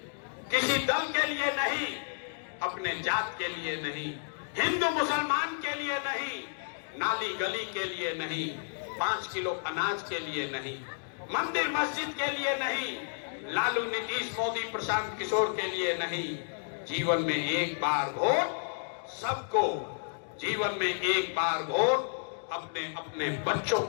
किसी दल के लिए नहीं, अपने जात के लिए नहीं, हिंदू मुसलमान के लिए नहीं, नाली गली के लिए नहीं, 5 किलो अनाज के लिए नहीं, मंदिर मस्जिद के लिए नहीं, लालू नीतीश मोदी प्रशांत किशोर के लिए नहीं। जीवन में एक बार वोट सबको, जीवन में एक बार वोट अपने अपने बच्चों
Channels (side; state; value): right; silent; digital silence